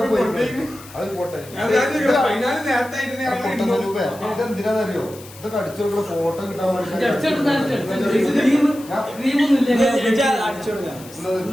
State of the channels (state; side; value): noise; left; hiss, 19 dB below the sound